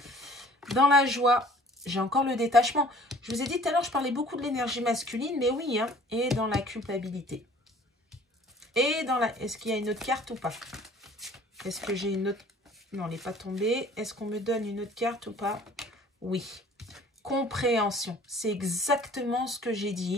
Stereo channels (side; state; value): both; normal; correlation 0.51